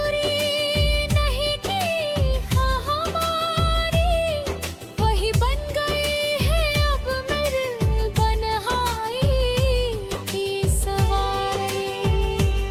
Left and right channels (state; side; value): identical; both; correlation 1.00